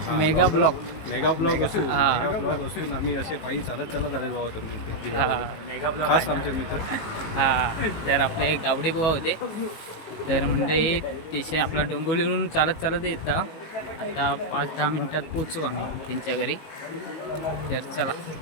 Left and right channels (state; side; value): late; right; 19 ms